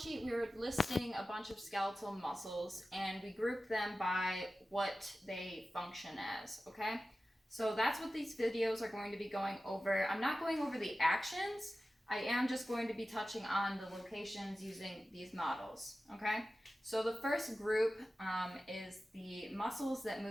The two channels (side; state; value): both; normal; correlation 0.95